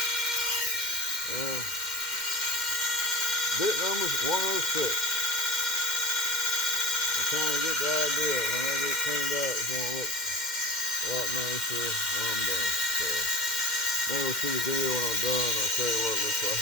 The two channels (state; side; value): late; right; 2.1 ms